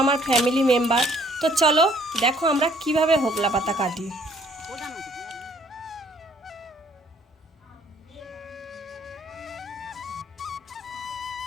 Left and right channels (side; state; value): both; normal; correlation 0.61